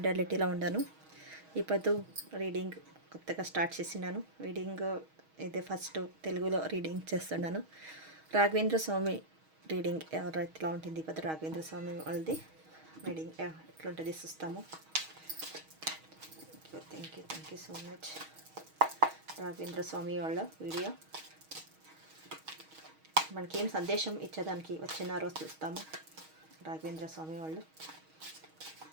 ఉన్నాను. ఇప్పుడు రీడింగ్ కొత్తగా స్టార్ట్ చేసినాను. రీడింగ్ ఇదే ఫస్ట్ తెలుగులో రీడింగ్ చేస్తున్నాను. రాఘవేంద్ర స్వామి రీడింగ్ ఎవరైతే ఉంటుంది. ఇప్పుడు రాఘవేంద్ర స్వామి వాళ్ళది రీడింగ్ ఎట్లుంటుంది చూస్తాము. Thank you so much. Raghavendra Swami వాళ్ళ వీడియో మనకేం సందేశం ఇచ్చేదానికి వచ్చినారో చూస్తాము. రాఘవేంద్ర స్వామి వాళ్ళు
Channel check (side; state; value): left; late; 6.3 ms